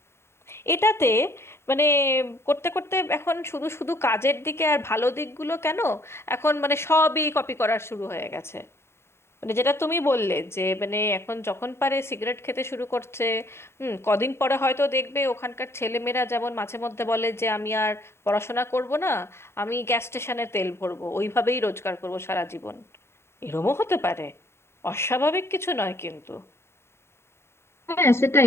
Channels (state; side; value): late; right; 0.12 ms